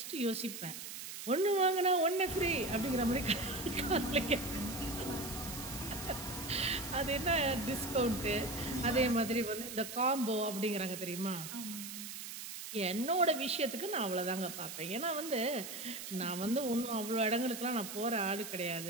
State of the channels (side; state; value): right; noise; hiss, 9 dB below the sound